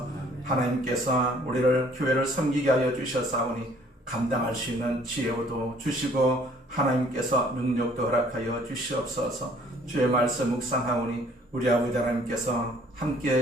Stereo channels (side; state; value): both; normal; correlation 0.58